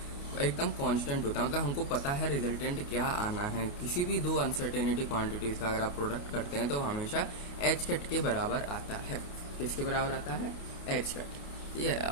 एकदम कांस्टेंट होता है। मतलब हमको पता है रिजल्टेंट क्या आना है। किसी भी दो अनसर्टेनिटी क्वांटिटीज का अगर आप प्रोडक्ट करते हैं तो हमेशा एच कट के बराबर आता है। किसके बराबर आता है, एच कट। ठीक है,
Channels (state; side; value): late; right; 29 ms